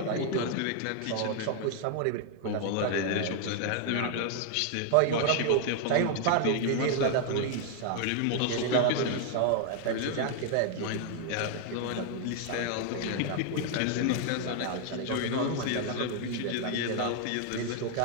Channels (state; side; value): different; both; correlation 0.00